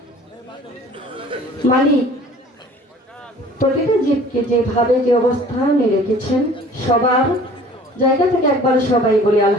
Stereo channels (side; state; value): both; normal; correlation 0.49